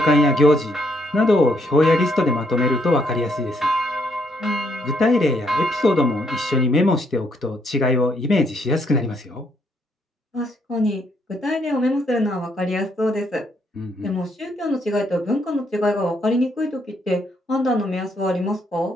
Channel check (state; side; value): normal; both; correlation 0.73